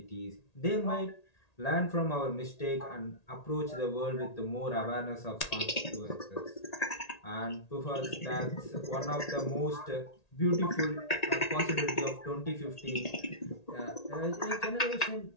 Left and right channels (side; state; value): right; late; 1.8 ms